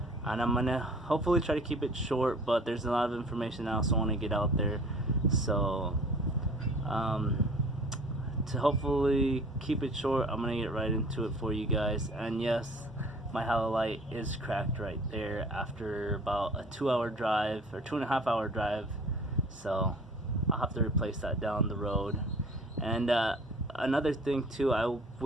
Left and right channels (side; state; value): both; normal; correlation 0.48